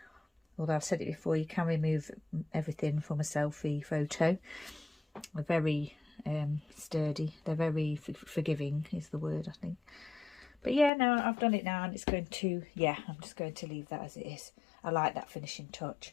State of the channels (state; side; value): drops out; right; at 10.9 s